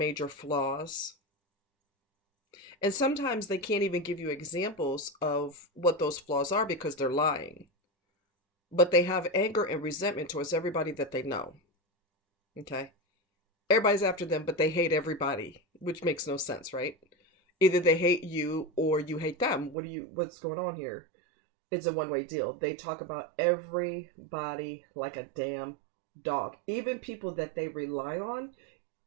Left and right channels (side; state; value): left; drops out; at 19.8 s